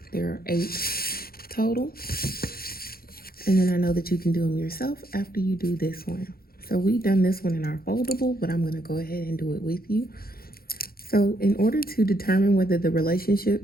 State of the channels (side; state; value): right; late; 0.44 ms